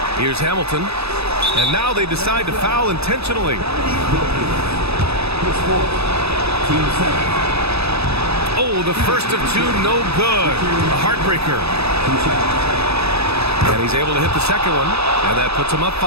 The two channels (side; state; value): left; late; 0.79 ms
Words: Here's Hamilton, and now they decide to foul intentionally. Oh, the first of two, no good. A heartbreaker. And he's able to hit the second one, and that puts him up